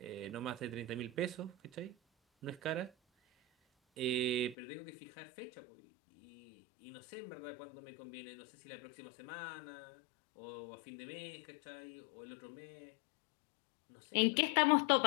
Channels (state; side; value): drops out; right; at 4.5 s